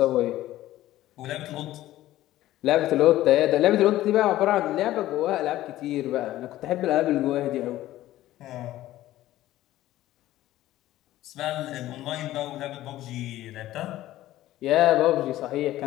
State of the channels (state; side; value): quieter; right; 14.9 dB